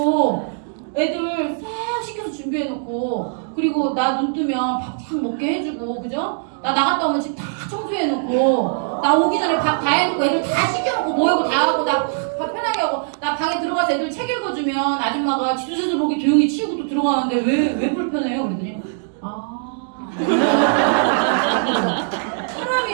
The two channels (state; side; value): silent; left; digital silence